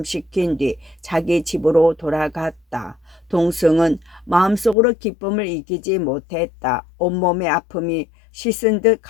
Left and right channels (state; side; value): drops out; right; at 4.8 s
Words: 뒤 자기 집으로 돌아갔다. 동승은 마음속으로 기쁨을 이기지 못했다. 온몸의 아픔이 씻은 듯